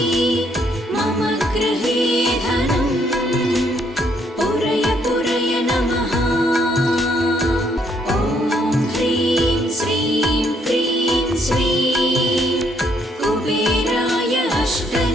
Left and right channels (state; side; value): normal; both; correlation 0.70